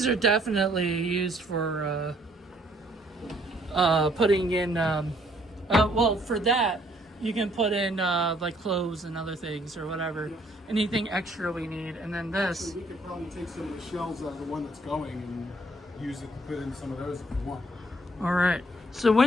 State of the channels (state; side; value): normal; both; correlation 0.64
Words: are definitely used for putting in. Well, for that, you can put in like clothes and other things or whatever, anything extra we need, and then this. We could probably take some of the shells out of the one that's going and use it to put in some of those if you want. All right. So